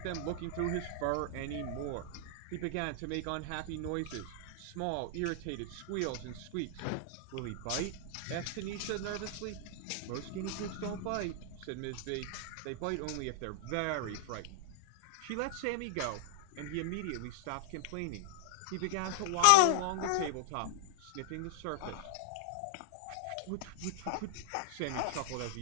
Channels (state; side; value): different; both; correlation -0.01